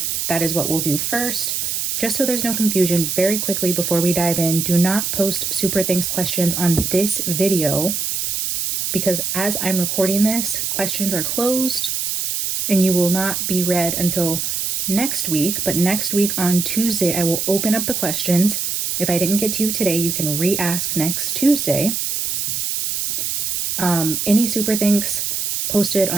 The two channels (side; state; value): right; noise; hiss, 1 dB below the sound